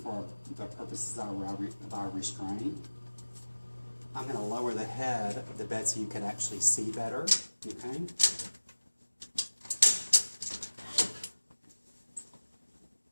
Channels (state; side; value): inverted; both; correlation -1.00